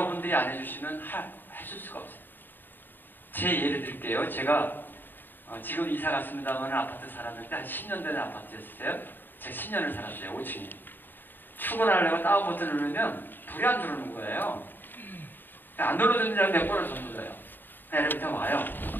안 해주시면 해줄 수가 없어요. 제 예를 들게요. 제가 지금 이사 갔습니다만 아파트 살았는데 한 10년 된 아파트였어요. 제가 10년을 살았어요. 5층에. 출근하려고 다운 버튼 누르면 불이 안 들어오는 거예요. 안 눌러주는 줄 알고 몇 번을 더 눌러요. 엘리베이터 와요.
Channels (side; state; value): right; late; 0.093 ms